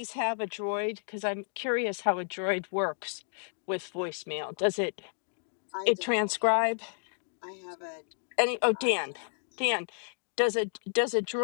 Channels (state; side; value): silent; right; digital silence